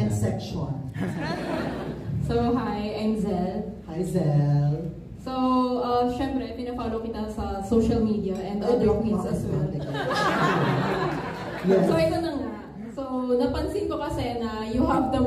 ka. section. So, hi, I'm Zel. Hi, Zel. So, syempre, pinafollow kita sa social media and other queens as well. Yes. So, ito na nga. So, napansin ko kasi na you have the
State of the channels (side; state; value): both; identical; correlation 1.00